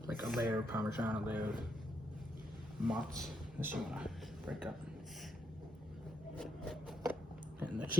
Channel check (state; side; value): normal; both; correlation 0.82